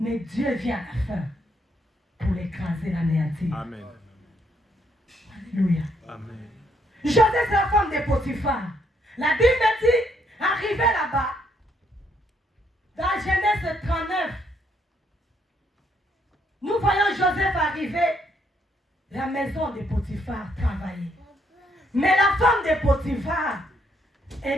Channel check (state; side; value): normal; both; correlation 0.72